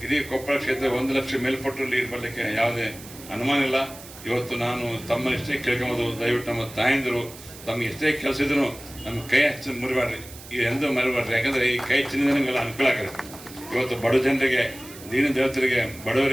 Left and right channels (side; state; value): right; noise; hiss, 17 dB below the sound